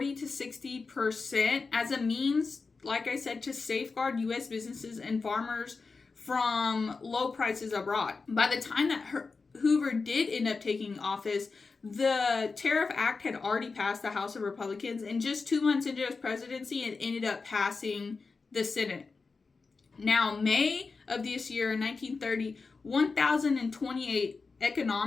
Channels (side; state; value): right; quieter; 4.4 dB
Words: to 60% as a means, like I said, to safeguard U.S. businesses and farmers from low prices abroad. By the time that Hoover did end up taking office, the Tariff Act had already passed the House of Republicans, and just 2 months into his presidency, it ended up passing the Senate. Now, May of this year, in 1930, 1,028